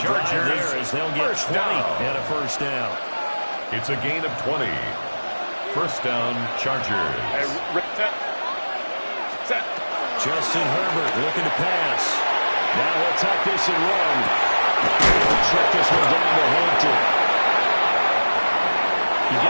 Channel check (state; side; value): inverted; both; correlation -1.00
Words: drive there as they'll get 20 and a first down. It's a gain of 20. First down, Chargers. Justin Herbert looking to pass. Now he'll tuck this and run. He'll check this one down to Hampton. You